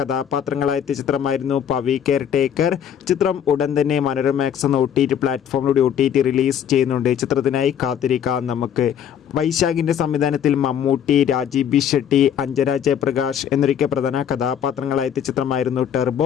കഥാപാത്രങ്ങളായ ചിത്രമായിരുന്നു പവി കെയർ ടേക്കർ. ചിത്രം ഉടൻ തന്നെ മനോരമാക്സ് എന്ന OTT പ്ലാറ്റ്ഫോമിലൂടെ OTT റിലീസ് ചെയ്യുന്നുണ്ട്. ചിത്രത്തിനായി കാത്തിരിക്കാം നമുക്ക്. വൈശാഖിൻ്റെ സംവിധാനത്തിൽ മമ്മൂട്ടി, രാജീവ് ബി ഷെട്ടി, അഞ്ജന ജയപ്രകാശ് എന്നൊക്കെ പ്രധാന കഥാപാത്രങ്ങളായ ചിത്രമായിരുന്നു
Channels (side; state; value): right; quieter; 9.0 dB